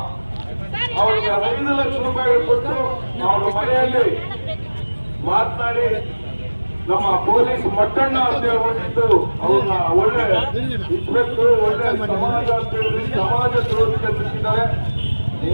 ಅವರಿಗೆ 5 ಲಕ್ಷ ರೂಪಾಯಿ ಕೊಟ್ಟು ಅವರ ಮನೆಯಲ್ಲಿ ಮಾತನಾಡಿ ನಮ್ಮ ಪೊಲೀಸ್ ಮಟ್ಟಣ್ಣ ಅಂತ ಹೇಳ್ಬಿಟ್ಟು ಅವ್ರನ್ನ ಒಳ್ಳೆ ಇನ್ಸ್ಪೆಕ್ಟರ್, ಒಳ್ಳೆ ಸಮಾಜ ಅಂತ ಹೇಳಿ ಸಮಾಜ ದ್ರೋಹಿ ಕಲ್ಪಿಸಿದ್ದಾರೆ.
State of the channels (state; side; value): inverted; both; correlation -1.00